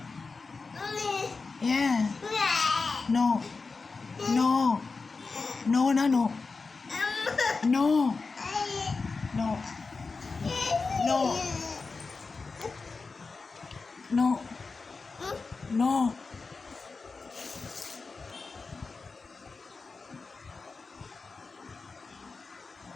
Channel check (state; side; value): quieter; right; 4.3 dB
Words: ஏன்? நோ நோ நோனா no no no no no no.